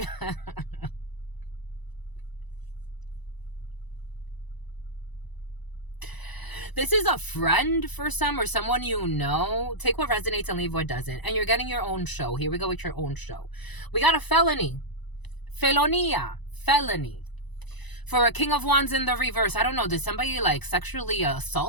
This is a friend for some, or someone you know. Take what resonates and leave what doesn't. And you're getting your own show. Here we go with your own show. We got a felony. Felonia. Felony. For a King of Wands in the reverse, I don't know, did somebody like sexually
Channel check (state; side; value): late; right; 1.0 ms